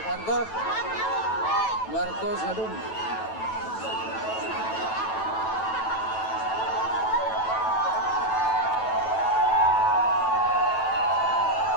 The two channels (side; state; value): right; late; 9.1 ms